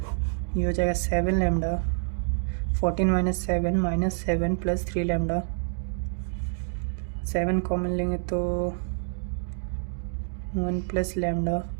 ये हो जाएगा 7 लैम्डा। 14 - 7 -7 + 3 लैम्डा, 7 कॉमन लेंगे तो 1 + लैम्डा।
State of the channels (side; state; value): left; silent; digital silence